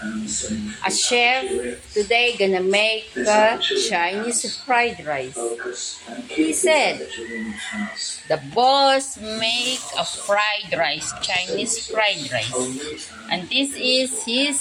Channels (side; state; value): both; identical; correlation 1.00